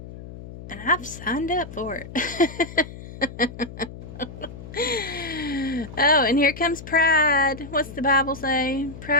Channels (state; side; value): noise; left; hum, 14 dB below the sound